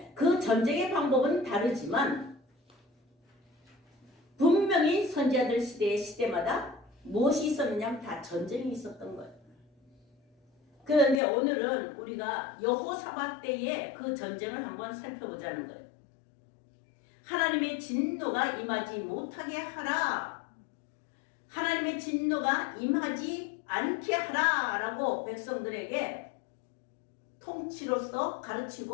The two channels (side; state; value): right; drops out; at 11.2 s